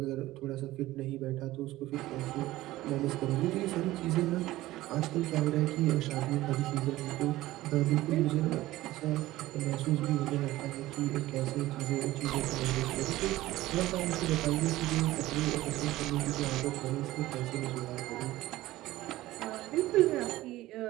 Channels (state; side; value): quieter; left; 16.7 dB